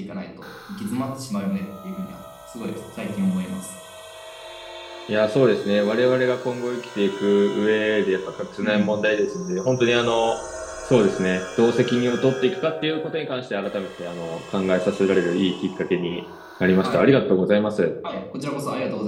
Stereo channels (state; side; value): identical; both; correlation 1.00